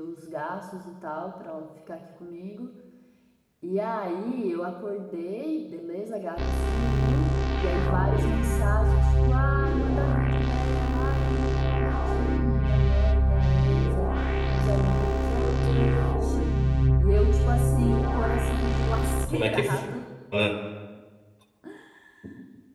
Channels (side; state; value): both; identical; correlation 1.00